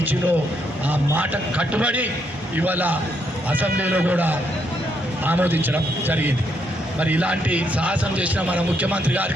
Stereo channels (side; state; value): both; normal; correlation 0.76